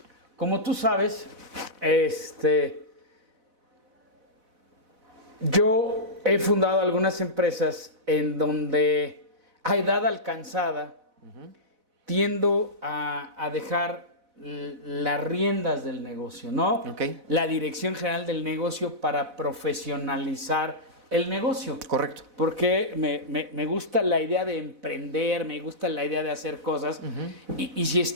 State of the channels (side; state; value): left; late; 4.0 ms